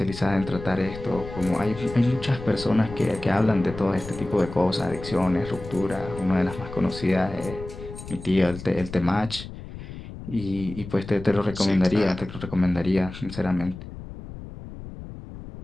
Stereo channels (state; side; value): noise; left; rumble, 12 dB below the sound